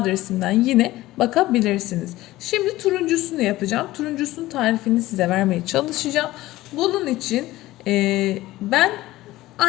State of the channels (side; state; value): right; quieter; 17.0 dB